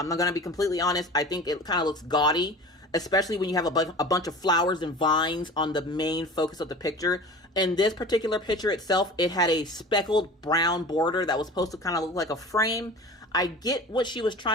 not going to be completely honest. I think it kind of looks gaudy, especially when you have a bunch of flowers and vines on the main focus of the picture. In this particular picture itself, it had a speckled brown border that was supposed to kind of look like a frame. I get what she was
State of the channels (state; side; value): normal; both; correlation 0.38